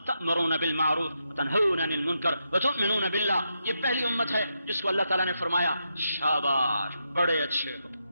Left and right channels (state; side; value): inverted; both; correlation -0.84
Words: تأمرون بالمعروف وتنہون عن المنکر وتؤمنون باللہ. یہ پہلی امت ہے جس کو اللہ تعالیٰ نے فرمایا شاباش، بڑے اچھے ہو.